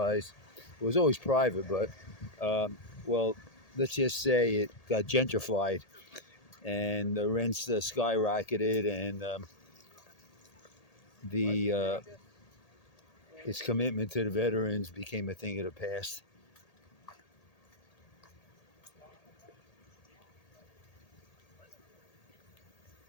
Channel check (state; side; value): late; right; 1.8 ms